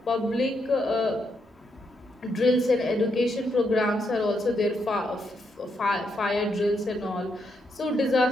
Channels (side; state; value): both; normal; correlation 0.79